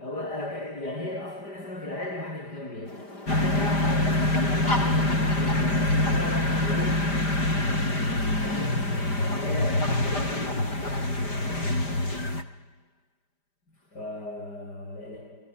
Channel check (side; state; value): right; late; 5.0 ms